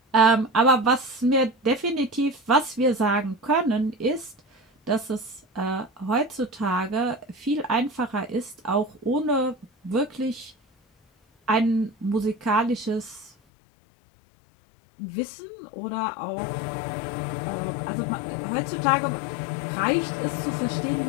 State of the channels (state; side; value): drops out; right; at 13.3 s